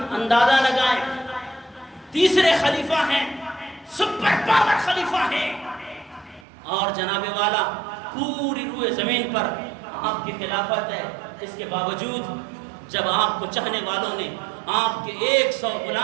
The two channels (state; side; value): drops out; left; at 6.5 s